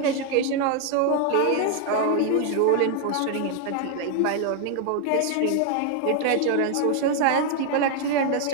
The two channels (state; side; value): different; both; correlation 0.00